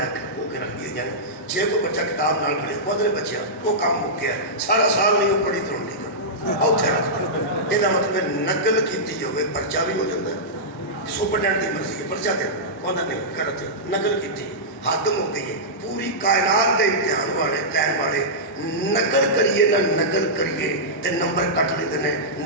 کے رکھ دی جائیں. جے کوئی بچہ کتاب نال پڑھے وہ بچے وہ کام ہو گیا سارا سال نہیں وہ پڑھی تو نہیں اتنے رکھ دیں. یہ مطلب نقل کی ہوئے پرچہ بھی ہو جاتا ہے. سپرڈینٹ کی مرضی ہے پرچہ دے وہ نہیں کرتے نقل کی حد ہو گئی ہے. پوری کائنات کے امتحان والے لین والے نقل کریے نہ نقل کریے تے نمبر کٹ لیتے ہیں,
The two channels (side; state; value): both; normal; correlation -0.13